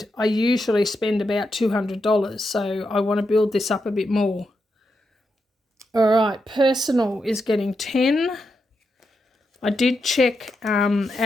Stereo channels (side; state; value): both; normal; correlation 0.85